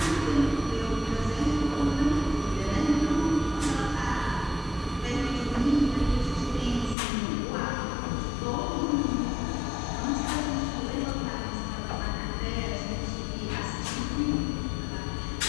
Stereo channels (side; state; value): right; drops out; at 7.0 s